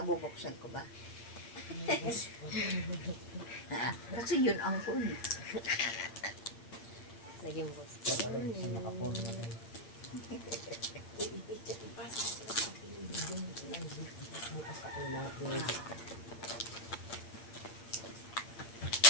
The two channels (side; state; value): right; late; 8.7 ms